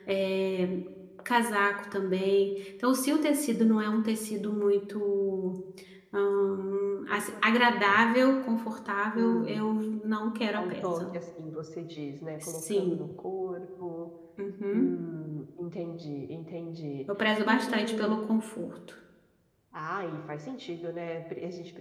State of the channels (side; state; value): both; identical; correlation 1.00